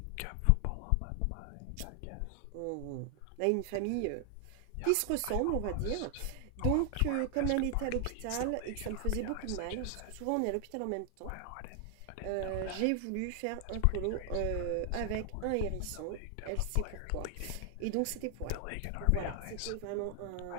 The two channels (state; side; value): different; both; correlation 0.00